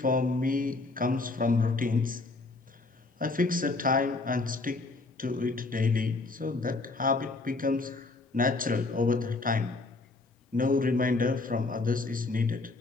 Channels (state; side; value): quieter; right; 3.5 dB